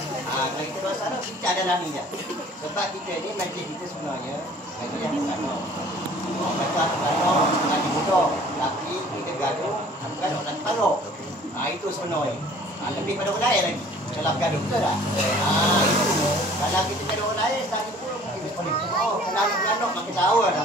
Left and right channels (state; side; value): normal; both; correlation 0.52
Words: Kalau kita masalah kita ada naminya. Sebab kita ni majlis kita sebenarnya majlis yang pertama. Gaduh lagi mudah. Tapi kita gaduh lagi paruh. Itu sebenarnya. Lebih pada orang lain lagi. Kalau gaduh betul tak? Itu. Kalau kita gaduh orang lain, tadi pun kita boleh. Kalau gaduh makin tahu